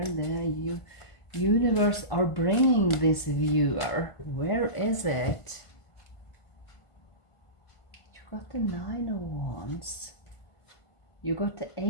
the universe are bringing this viewer? Where is it? You got the Nine of Wands. You got the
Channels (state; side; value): late; right; 1.5 ms